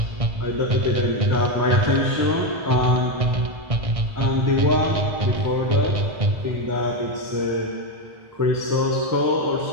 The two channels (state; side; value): late; left; 1.6 ms